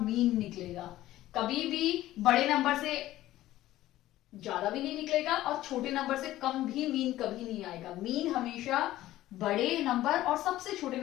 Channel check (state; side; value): quieter; right; 15.0 dB